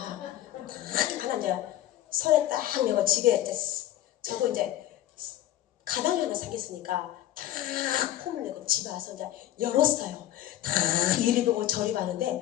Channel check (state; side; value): quieter; right; 13.5 dB